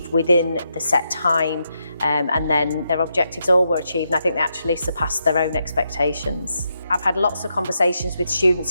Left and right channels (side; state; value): both; inverted; correlation -0.83